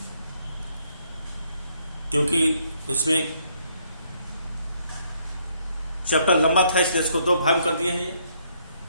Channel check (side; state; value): both; inverted; correlation -0.69